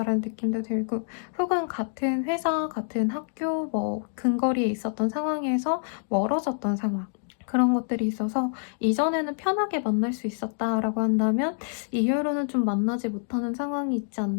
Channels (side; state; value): right; silent; digital silence